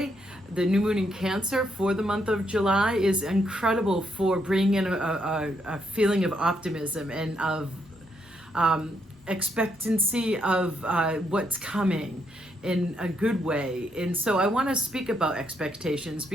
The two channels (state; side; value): normal; both; correlation 0.76